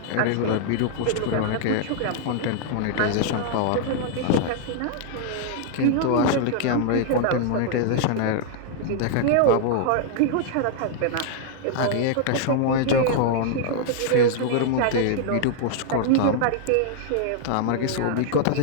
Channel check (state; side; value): different; both; correlation -0.01